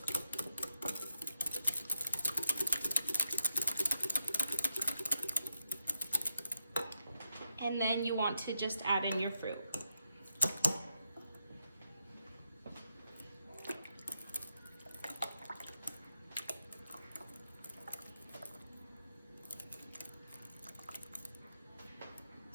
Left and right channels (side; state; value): both; inverted; correlation -0.82